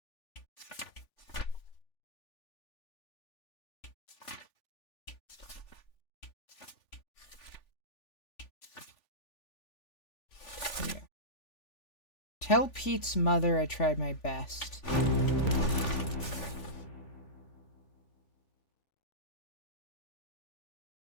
Tell Pete's mother I tried my best.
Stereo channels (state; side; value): late; right; 3.4 ms